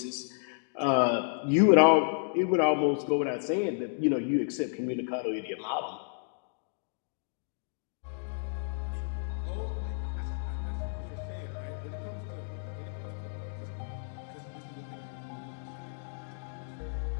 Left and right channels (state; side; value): silent; right; digital silence